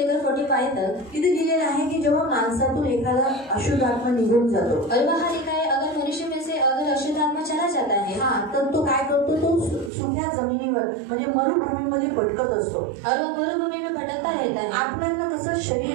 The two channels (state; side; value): drops out; left; at 9.9 s